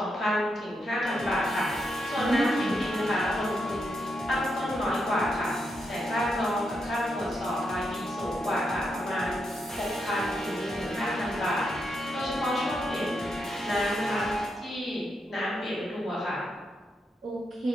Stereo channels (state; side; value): normal; both; correlation 0.82